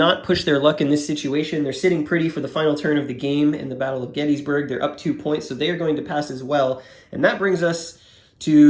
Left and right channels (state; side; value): identical; both; correlation 1.00